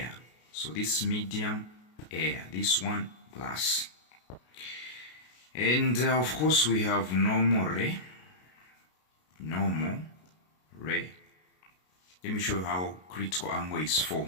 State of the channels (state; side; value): late; right; 33 ms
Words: So this medium, air, this one, glass. And of course we have normal ray. Normal ray. Let me show you how critical angle is